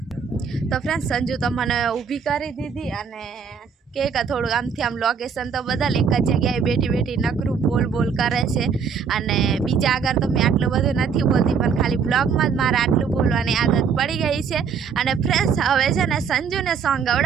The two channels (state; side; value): quieter; left; 6.3 dB